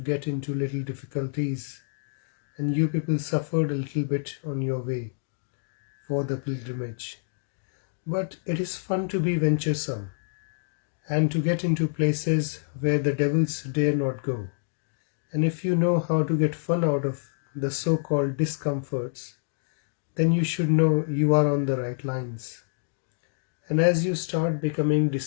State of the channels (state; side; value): silent; right; digital silence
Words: into little difficulties and you people suffered a little bit on your way for the pilgrimage. But it is fun to be venturesome and to get into places where the devils dare not go. And if you know how to get fun out of the so-called discomforts, then you should know you are on the right lines. And as you start becoming